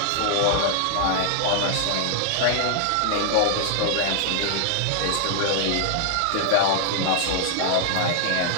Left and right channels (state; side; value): different; both; correlation 0.00